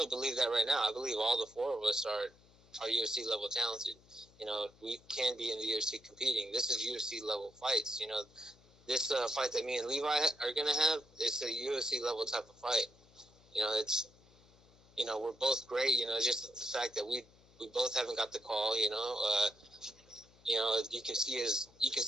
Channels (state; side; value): noise; left; hum, 27 dB below the sound